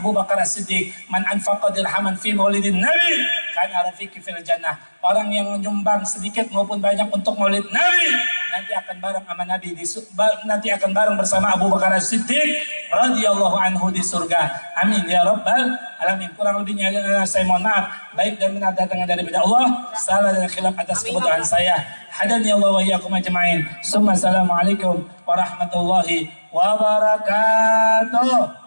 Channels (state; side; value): inverted; both; correlation -1.00